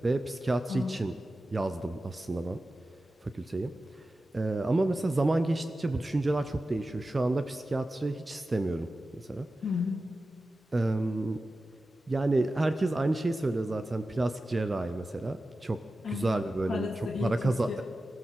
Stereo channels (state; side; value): normal; both; correlation 0.94